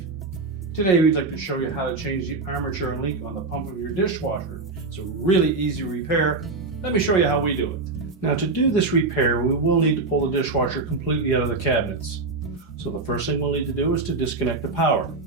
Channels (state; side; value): quieter; left; 3.7 dB